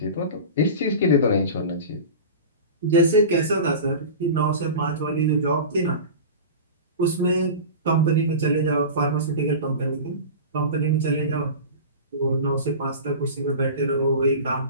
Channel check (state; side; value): inverted; both; correlation -0.32